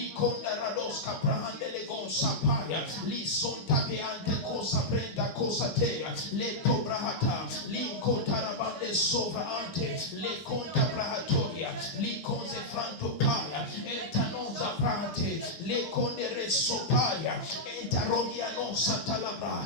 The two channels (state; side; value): late; right; 8.0 ms